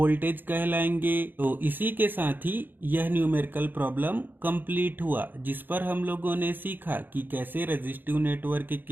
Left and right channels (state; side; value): late; left; 0.092 ms